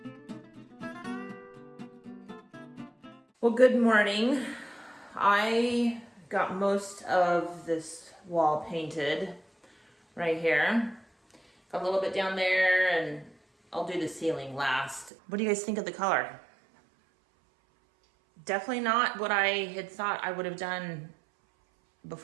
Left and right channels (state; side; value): drops out; left; at 15.1 s